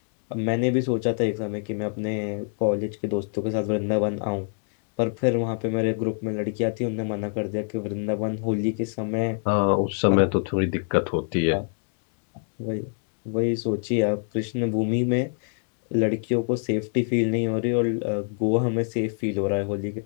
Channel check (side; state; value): right; silent; 59 dB below the other